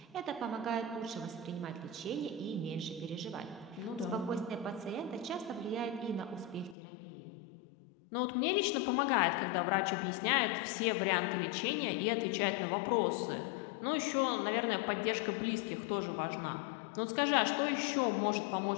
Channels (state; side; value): drops out; right; at 6.8 s